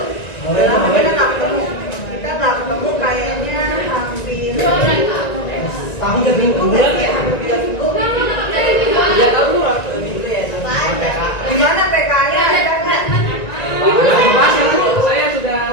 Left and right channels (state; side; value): late; right; 1.9 ms